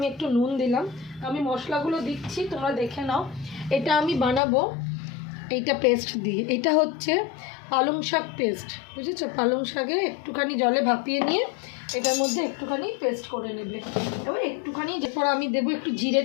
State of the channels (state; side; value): drops out; right; at 4.4 s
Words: একটু নুন দিলাম। আমি মশলাগুলো দিচ্ছি, তোমরা দেখে নাও। এটা আমি বানাবো এইটা পেস্ট দিয়ে, এটা হচ্ছে পালং শাক পেস্ট, বুঝেছো? পালং শাকে একটুখানি জলে ভাপিয়ে নিয়ে এটার মধ্যে একটুখানি পেস্ট করে নেবে। এবার একটুখানি, এরপর আমি দেবো একটু